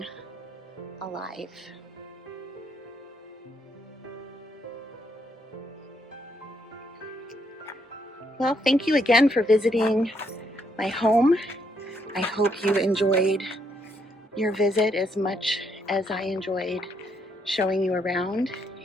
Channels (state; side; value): normal; both; correlation 0.74